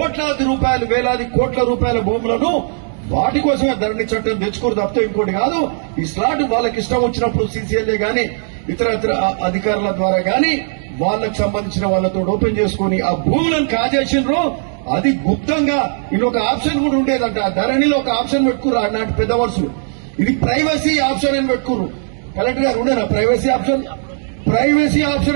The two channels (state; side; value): silent; left; digital silence